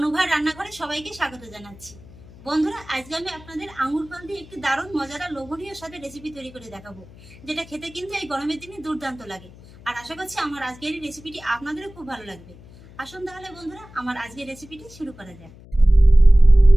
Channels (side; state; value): left; noise; hum, 21 dB below the sound